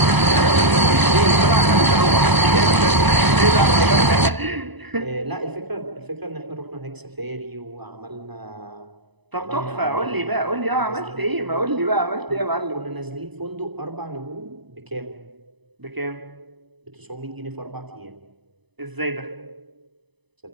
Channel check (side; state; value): left; late; 1.0 ms